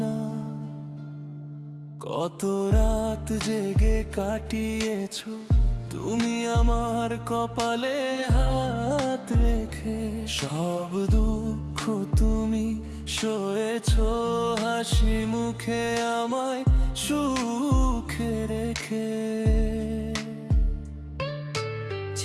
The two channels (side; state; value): both; identical; correlation 1.00